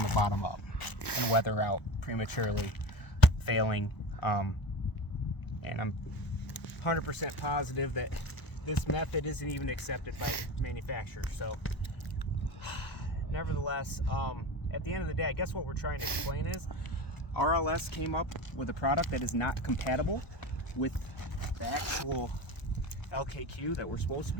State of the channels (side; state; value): right; late; 1.0 ms